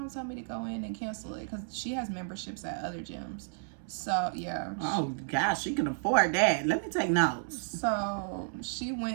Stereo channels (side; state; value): left; silent; 56 dB below the other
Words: told me to go in and cancel it because she has memberships at other gyms. So, yeah. Oh, gosh, she can afford that. Let me take notes. So, she